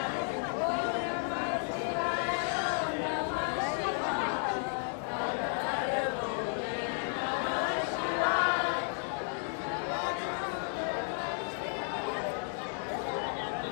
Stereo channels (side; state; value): right; silent; 56 dB below the other